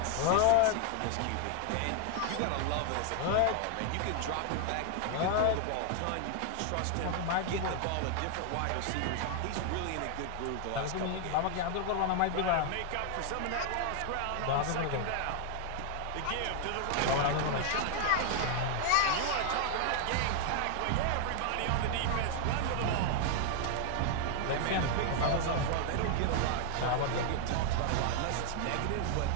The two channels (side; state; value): both; different; correlation 0.00